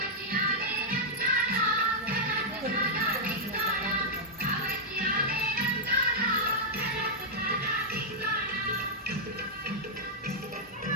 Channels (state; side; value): normal; both; correlation -0.06